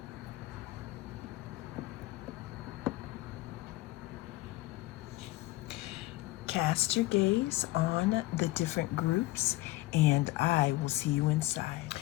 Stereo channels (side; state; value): right; quieter; 19.0 dB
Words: Cast your gaze on the different groups, and I will see you inside.